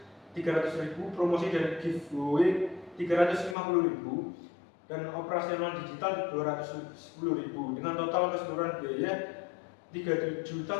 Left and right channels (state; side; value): drops out; right; at 3.6 s